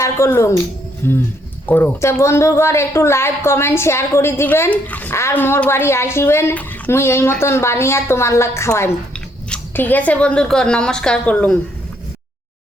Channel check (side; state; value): both; normal; correlation 0.70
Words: করলুম, করো। তা বন্ধুগর একটু লাইক কমেন্ট শেয়ার করে দিবেন, আর মোর বাড়ি আসিবেন, মুই এই মতন বানিয়ে তোমার লাগ খাওয়াইম। ঠিক আছে বন্ধুগর, নমস্কার করলুম।